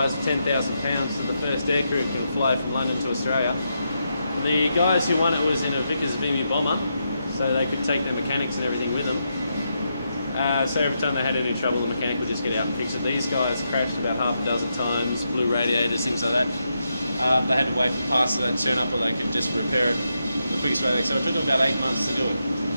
of £10,000 to the first aircrew who can fly from London to Australia. The guys who won it was in a Vickers Vimy bomber, so they could take their mechanics and everything with them. So every time they had any trouble, the mechanic would just get out and fix it. These guys crashed about half a dozen times, blew radiators, things like that. They had to wait for parts of that to turn up, or they could just repair it the quickest way. So it took them about 8 months to do it.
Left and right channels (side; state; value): both; inverted; correlation -0.84